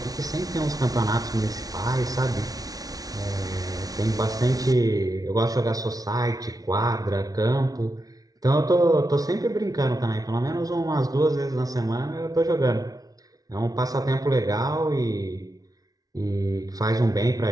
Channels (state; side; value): late; left; 0.18 ms